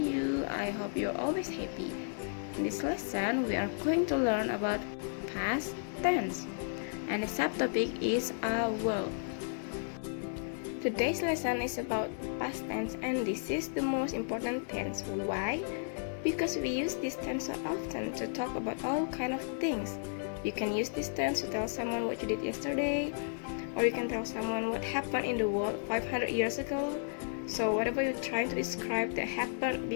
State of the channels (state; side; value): silent; right; digital silence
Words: I hope you're always happy. In this lesson, we are going to learn about past tense, and the subtopic is a world. Today's lesson is about past tense, and this is the most important tense. Why? Because we use this tense so often to talk about all kind of things. You can use this tense to tell someone what you did yesterday, or you can tell someone what happened in the world 500 years ago. So whatever you're trying to describe that happened